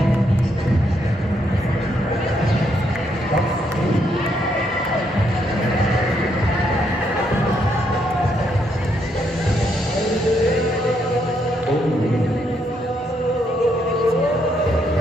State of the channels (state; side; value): normal; both; correlation 0.75